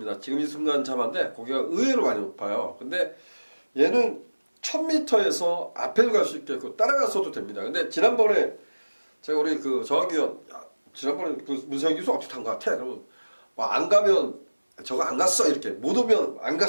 지금 이 순간 잡았는데 고기가 의외로 많이 높아요. 근데 얘는 1000m에서 앞에도 갈 수 있겠고 따라갔어도 됩니다. 근데 지난번에 제가 우리 그 정학위원 지난번에 그 문세영 교수 어떻게 탄 것 같아? 그러면 뭐 안 가면 저거 안 갔어 이렇게 못 오면 안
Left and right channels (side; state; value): both; inverted; correlation -1.00